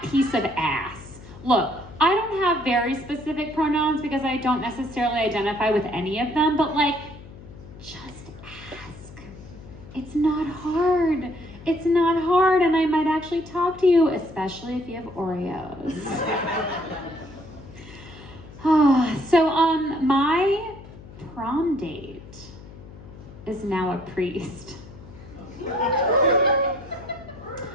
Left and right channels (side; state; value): left; noise; hum, 18 dB below the sound